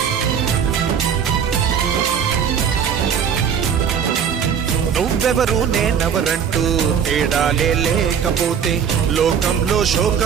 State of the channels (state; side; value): quieter; left; 7.6 dB